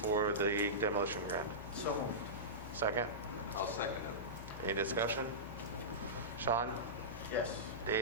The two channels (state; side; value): noise; left; hum, 11 dB below the sound